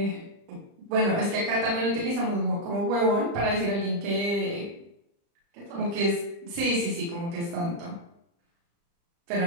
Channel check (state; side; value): late; left; 35 ms